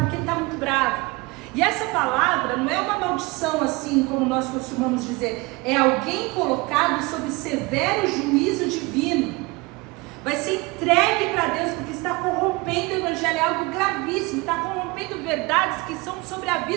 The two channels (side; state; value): left; quieter; 24.3 dB